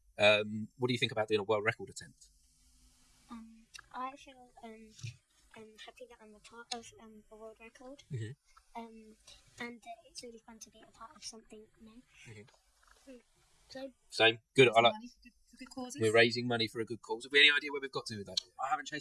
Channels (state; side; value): identical; both; correlation 1.00